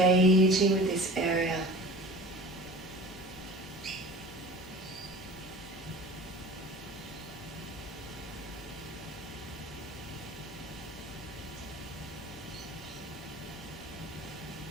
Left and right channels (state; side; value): normal; both; correlation 0.39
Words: with this area.